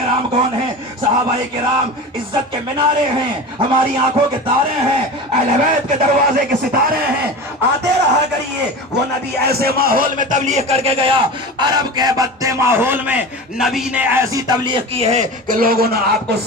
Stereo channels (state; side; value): normal; both; correlation 0.30